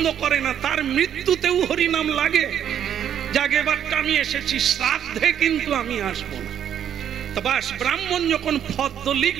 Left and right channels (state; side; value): quieter; left; 9.5 dB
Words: করে না, তার মৃত্যুতেও হরিনাম লাগে। জাগেবারটা আমি এসেছি, শ্রাদ্ধে কিন্তু আমি আসবো না। তো বাস, ব্রাহ্মণ যখন ফদ্দ